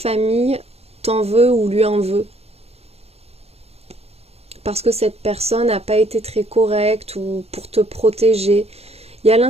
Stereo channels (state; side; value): late; left; 0.30 ms